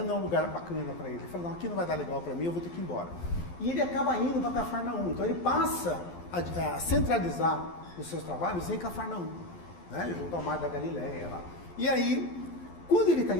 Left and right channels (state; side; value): late; right; 12 ms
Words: é um lugar bacana para ele. Ele fala, não, aqui não vai dar legal para mim, eu vou ter que ir embora. E ele acaba indo para Cafarnaum. Então ele passa a centralizar os seus trabalhos em Cafarnaum, né? Junto ao Mar da Galileia lá. E aí, quando ele está